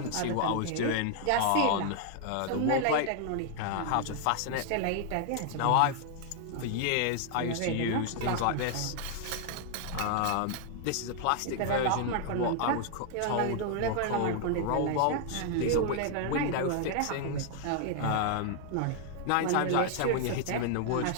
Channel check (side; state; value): both; different; correlation 0.00